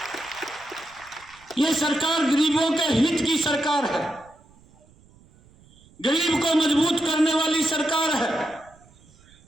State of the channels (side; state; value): right; noise; rumble, 28 dB below the sound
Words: ये सरकार गरीबों के हित की सरकार है, गरीब को मजबूत करने वाली सरकार है।